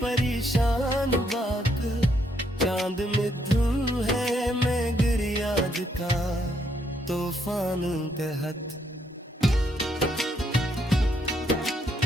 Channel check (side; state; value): both; normal; correlation 0.74